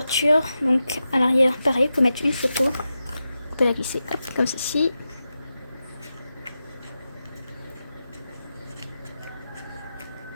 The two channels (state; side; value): inverted; both; correlation -0.91